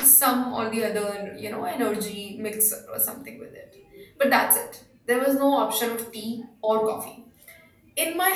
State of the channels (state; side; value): identical; both; correlation 1.00